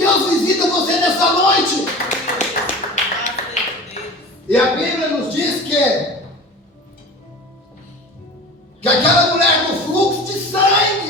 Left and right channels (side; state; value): both; normal; correlation 0.36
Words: visita você nessa noite. E a Bíblia nos diz que aquela mulher com fluxo de